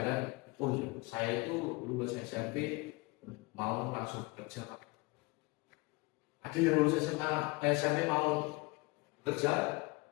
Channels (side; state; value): right; quieter; 25.5 dB